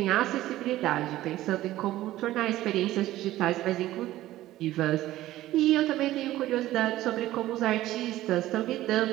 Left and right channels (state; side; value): quieter; left; 15.2 dB